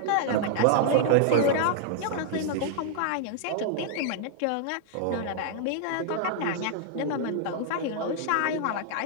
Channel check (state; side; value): different; both; correlation -0.01